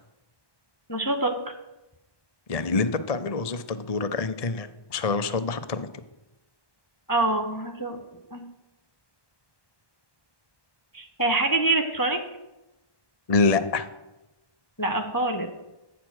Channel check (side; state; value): right; late; 1.1 ms